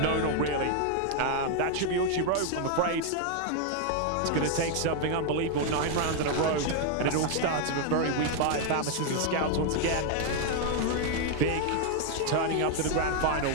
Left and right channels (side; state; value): both; different; correlation 0.00